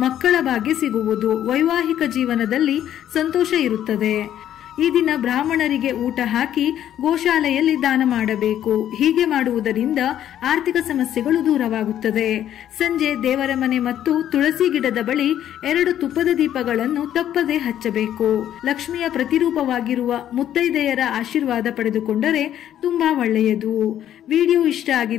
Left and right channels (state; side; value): quieter; right; 11.0 dB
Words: ಮಕ್ಕಳ ಭಾಗ್ಯ ಸಿಗುವುದು. ವೈವಾಹಿಕ ಜೀವನದಲ್ಲಿ ಸಂತೋಷ ಇರುತ್ತದೆ. ಈ ದಿನ ಬ್ರಾಹ್ಮಣರಿಗೆ ಊಟ ಹಾಕಿ ಗೋಶಾಲೆಯಲ್ಲಿ ದಾನ ಮಾಡಬೇಕು. ಹೀಗೆ ಮಾಡುವುದರಿಂದ ಆರ್ಥಿಕ ಸಮಸ್ಯೆಗಳು ದೂರವಾಗುತ್ತದೆ. ಸಂಜೆ ದೇವರ ಮನೆ ಮತ್ತು ತುಳಸಿ ಗಿಡದ ಬಳಿ 2 ತುಪ್ಪದ ದೀಪಗಳನ್ನು ತಪ್ಪದೆ ಹಚ್ಚಬೇಕು. ಲಕ್ಷ್ಮಿಯ ಪ್ರತಿರೂಪವಾಗಿರುವ ಮುತ್ತೈದೆಯರ ಆಶೀರ್ವಾದ ಪಡೆದುಕೊಂಡರೆ ತುಂಬಾ ಒಳ್ಳೆಯದು. ವಿಡಿಯೋ ಇಷ್ಟ